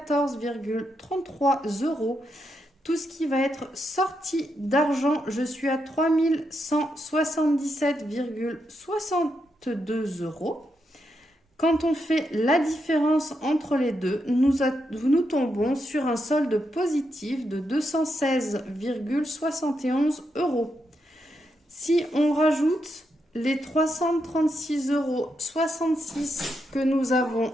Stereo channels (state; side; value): normal; both; correlation 0.82